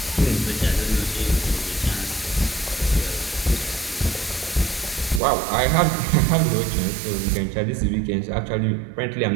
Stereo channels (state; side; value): drops out; left; at 5.2 s